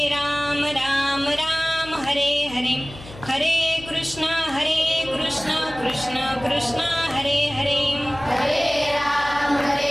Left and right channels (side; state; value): left; noise; hum, 17 dB below the sound